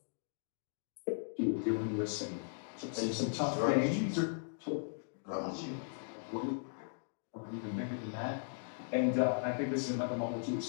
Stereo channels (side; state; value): right; silent; digital silence